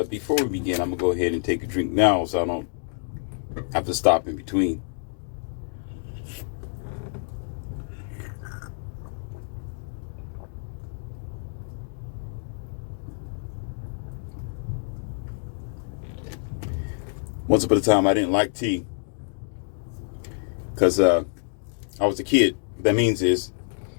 before we begin, I'm going to go ahead and take a drink now so I don't have to stop in between. Once upon a time, I didn't like tea because I was a kid. What that means is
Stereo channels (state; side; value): silent; right; digital silence